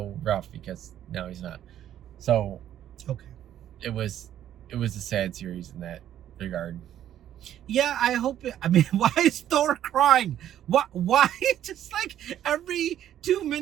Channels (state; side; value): quieter; left; 11.2 dB